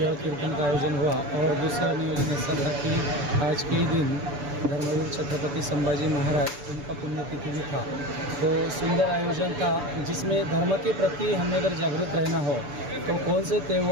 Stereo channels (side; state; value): left; late; 6.9 ms